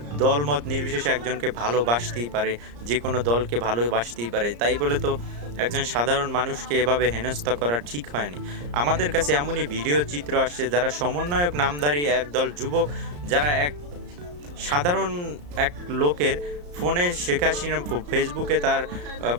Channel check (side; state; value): left; late; 34 ms